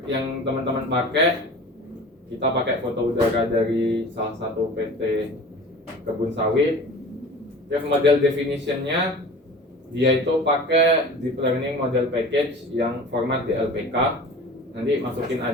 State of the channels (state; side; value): normal; both; correlation 0.40